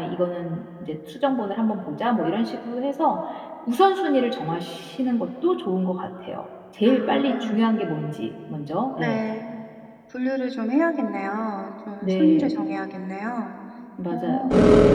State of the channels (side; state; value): both; identical; correlation 1.00